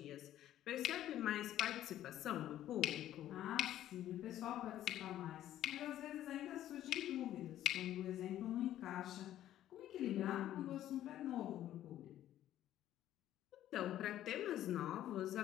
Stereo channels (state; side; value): quieter; right; 12.5 dB